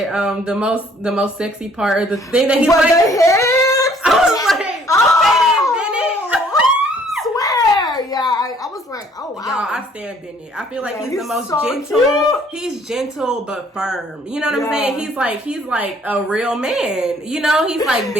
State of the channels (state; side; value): normal; both; correlation 0.60